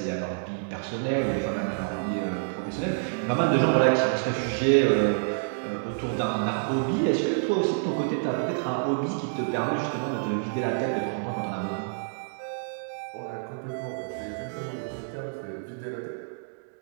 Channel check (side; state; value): left; silent; digital silence